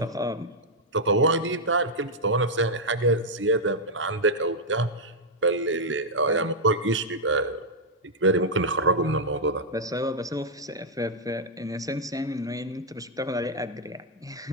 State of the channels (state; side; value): normal; both; correlation -0.04